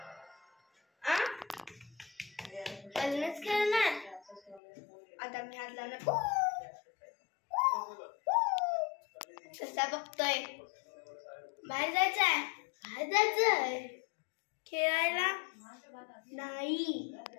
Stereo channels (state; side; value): drops out; right; at 4.6 s